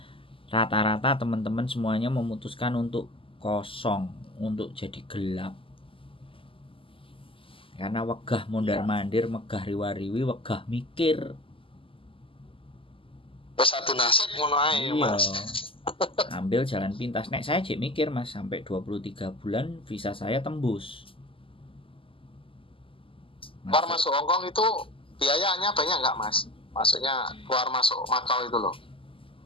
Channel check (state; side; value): late; right; 0.26 ms